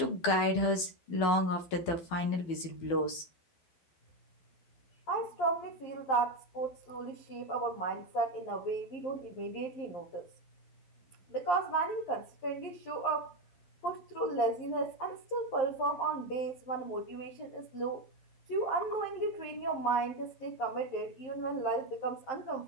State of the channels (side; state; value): right; late; 12 ms